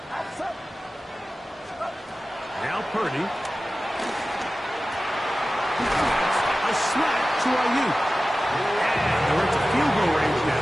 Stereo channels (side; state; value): both; normal; correlation 0.95